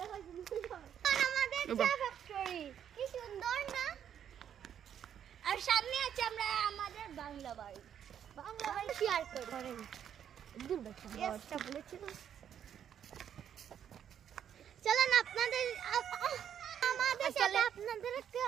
আমাদের চা ফ্যাক্টরি কি সুন্দর না? আর সামনে আছে আমরা আমাদের বাংলা বাড়ি। বাংলা বাড়ি শেয়ার করেন। দূরটা বলেছিল। চলেন আপনাদের আমাদের সাথে আপনাদের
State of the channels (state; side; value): quieter; left; 9.2 dB